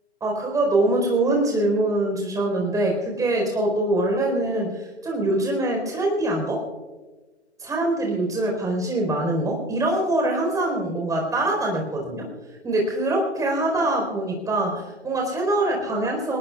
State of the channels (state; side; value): normal; both; correlation 0.45